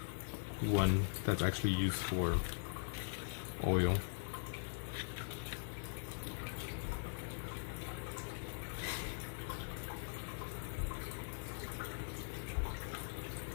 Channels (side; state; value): right; silent; digital silence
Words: One that's actually used for oil.